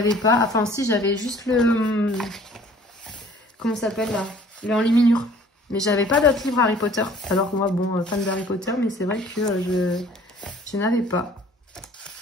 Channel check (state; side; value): normal; both; correlation 0.52